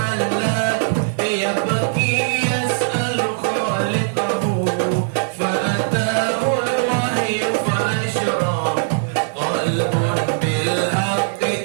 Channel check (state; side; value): silent; left; digital silence